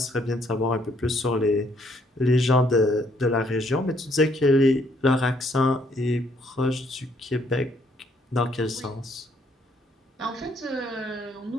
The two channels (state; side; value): normal; both; correlation 0.68